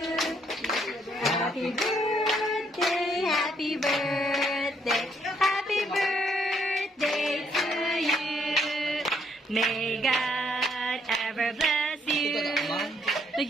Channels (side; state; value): both; normal; correlation 0.70